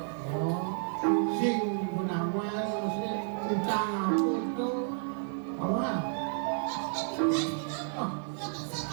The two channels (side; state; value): left; silent; 57 dB below the other